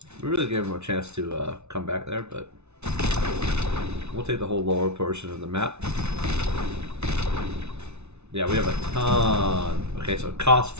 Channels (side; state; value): left; late; 0.81 ms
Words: We really gave him a chance to come back there, but we'll take the whole lower portion of the map. Yeah, we have a ton. Okay, so it costs